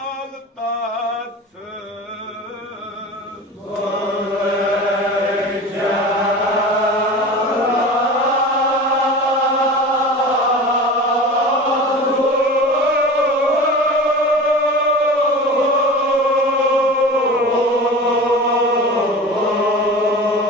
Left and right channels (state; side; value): normal; both; correlation 0.34